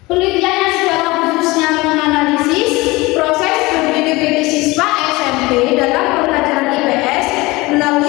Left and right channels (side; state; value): right; quieter; 21.9 dB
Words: Penelitiannya secara khususnya menganalisis proses berpikir kritis siswa SMP dalam pembelajaran IPS